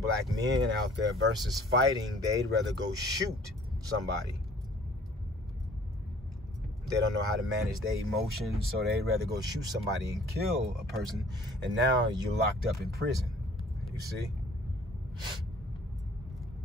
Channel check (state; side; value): normal; both; correlation 0.54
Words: black men out there versus fighting. They'd rather go shoot somebody. They don't know how to manage their emotions, so they'd rather go shoot somebody and kill a person, and now you're locked up in prison, you see?